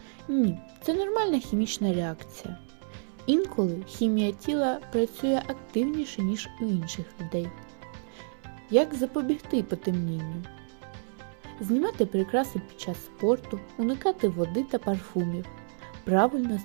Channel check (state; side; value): silent; left; 58 dB below the other